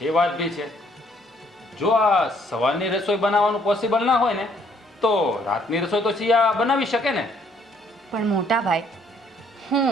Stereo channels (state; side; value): normal; both; correlation 0.65